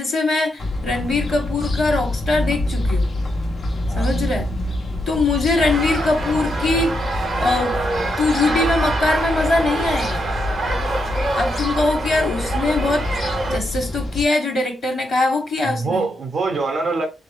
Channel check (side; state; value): both; normal; correlation 0.81